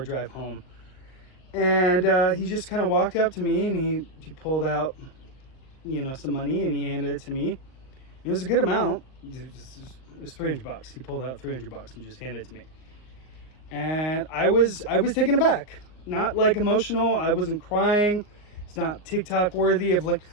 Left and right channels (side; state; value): right; late; 39 ms